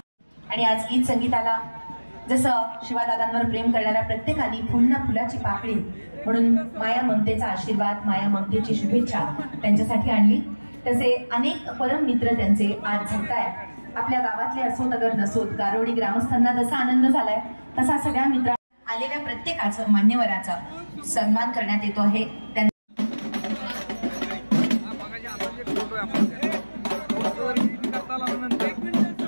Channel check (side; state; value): both; inverted; correlation -1.00